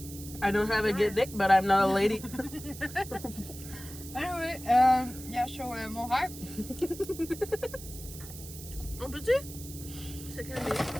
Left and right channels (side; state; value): right; noise; hiss, 14 dB below the sound